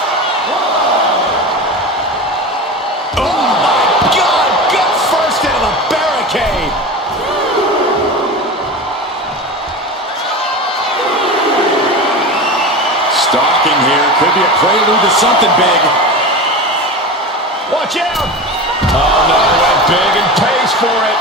Oh my God! Gut first into the barricade. Stalking here. Could be a prelude to something big. Watch out! Oh no, went big and pays for it.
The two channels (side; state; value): both; normal; correlation 0.28